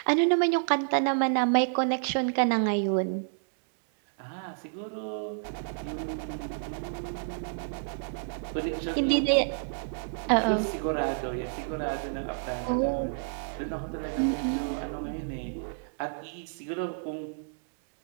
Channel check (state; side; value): silent; left; 58 dB below the other